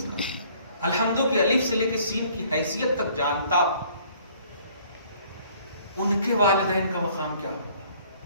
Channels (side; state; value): both; inverted; correlation -0.58